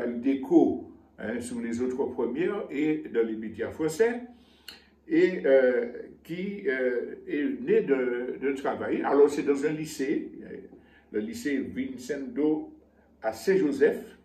eu d'écho sur les autres premières et dans les médias français, et qui est né de travail. Alors c'est dans un lycée, le lycée Vincendo à Saint-Joseph,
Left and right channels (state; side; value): identical; both; correlation 1.00